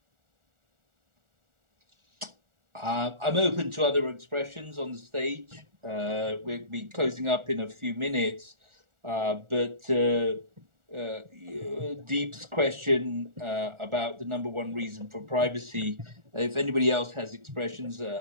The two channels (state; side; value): late; left; 1.4 ms